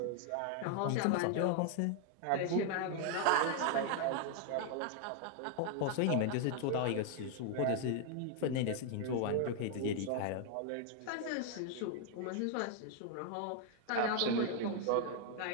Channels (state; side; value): different; both; correlation 0.00